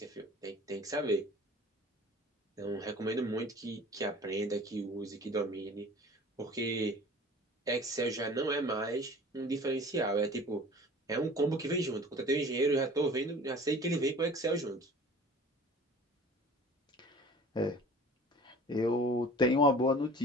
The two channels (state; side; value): normal; both; correlation 0.45